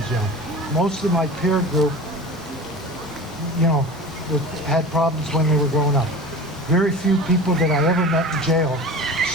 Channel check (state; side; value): normal; both; correlation 0.35